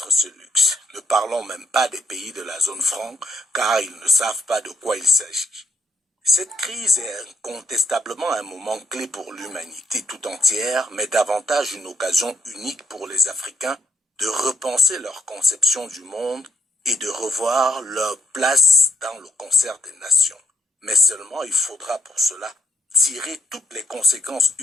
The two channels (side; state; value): both; normal; correlation 0.74